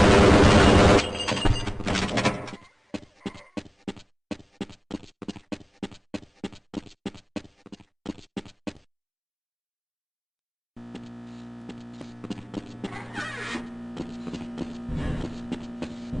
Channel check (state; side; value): identical; both; correlation 1.00